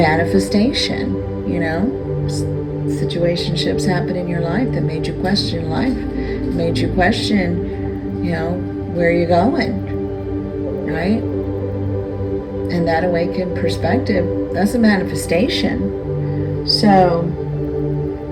Situationships happen in your life that made you question life, made you question, where you're going, right? And that awakened perspective, that's a manifestation. So,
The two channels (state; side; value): identical; both; correlation 1.00